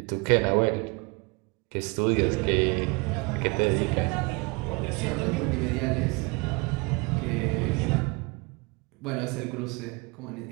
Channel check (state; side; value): quieter; left; 28.6 dB